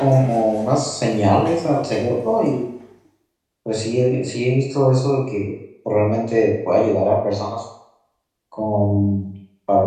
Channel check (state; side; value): identical; both; correlation 1.00